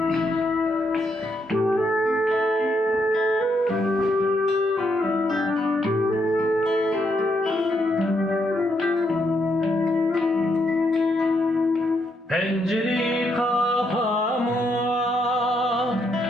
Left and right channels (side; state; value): both; normal; correlation 0.77